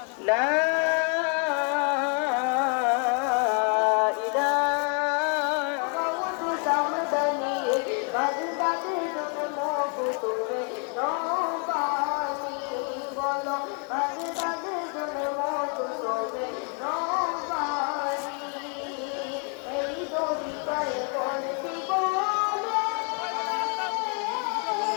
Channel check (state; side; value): quieter; right; 39.8 dB